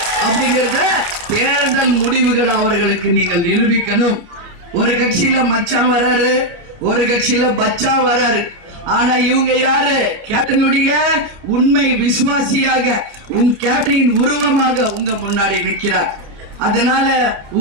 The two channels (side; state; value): left; late; 30 ms